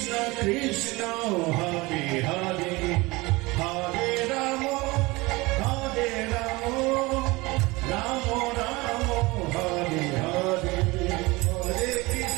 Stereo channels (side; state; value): left; quieter; 22.8 dB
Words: কৃষ্ণ হরে হরে, হরে রাম রাম রাম হরে হরে, হরে